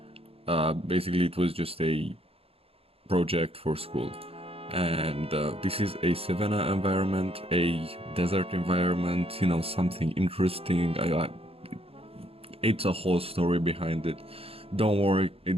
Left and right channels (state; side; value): late; left; 0.28 ms